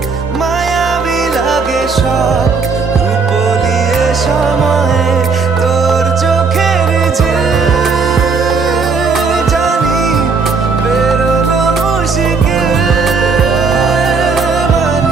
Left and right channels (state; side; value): quieter; left; 4.8 dB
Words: মায়াবী লাগে সব রূপলিয়ে সময়ে তোর চোখের ঝিল জানি বেরোনো মুশকিল